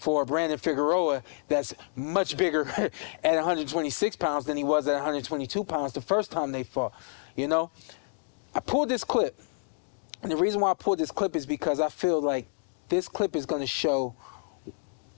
Brandon Figueroa that's much bigger at 126 pounds than he was at 122 pounds the first time they fought? You know, I pulled this clip, and the reason why I pulled this clip is because I feel like this clip is going to show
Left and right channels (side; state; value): right; silent; digital silence